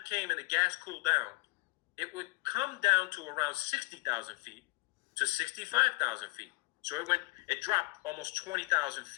came and the gas cooled down, it would come down to around 60,000 feet to 65,000 feet. So it dropped almost 20,000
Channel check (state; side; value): quieter; right; 24.6 dB